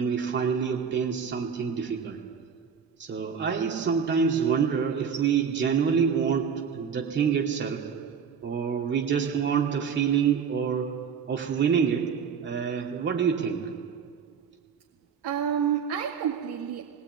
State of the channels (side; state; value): left; quieter; 6.8 dB